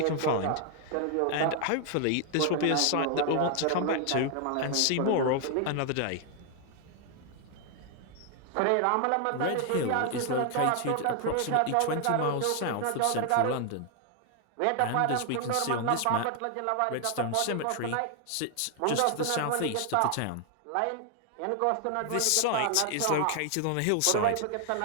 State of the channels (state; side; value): different; both; correlation 0.00